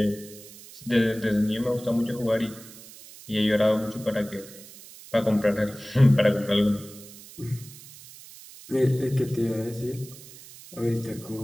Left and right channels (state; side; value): noise; right; hiss, 18 dB below the sound